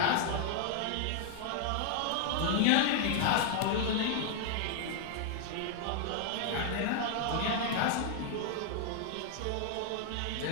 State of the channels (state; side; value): different; both; correlation 0.00